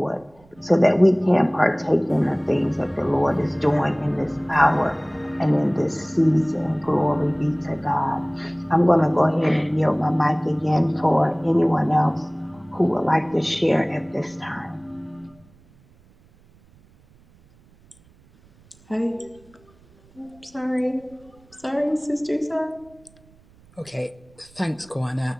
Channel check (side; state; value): right; noise; rumble, 29 dB below the sound